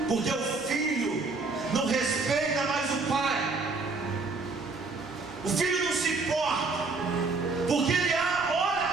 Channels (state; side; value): quieter; left; 3.9 dB